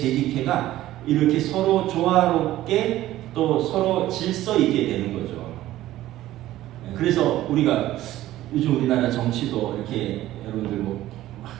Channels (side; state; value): left; quieter; 14.8 dB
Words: 이렇게 서로 조화롭게 또 서로 질서 있게 되는 거죠. 그래서 우리가 요즘 우리나라 정치도 이렇게 여러분들